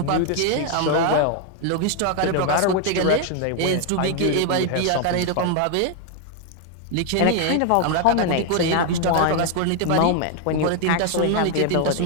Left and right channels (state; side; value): different; both; correlation 0.00